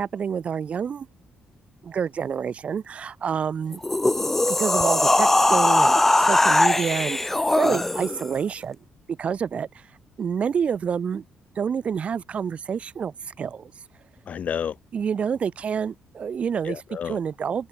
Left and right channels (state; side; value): normal; both; correlation 0.88